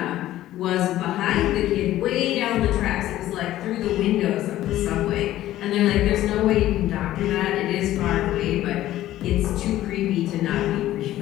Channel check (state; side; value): quieter; right; 14.2 dB